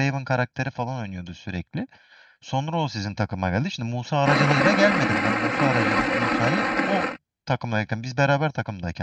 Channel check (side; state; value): both; identical; correlation 1.00